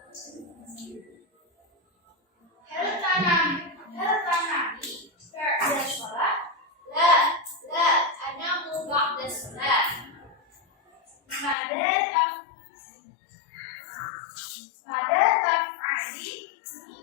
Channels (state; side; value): drops out; right; at 11.6 s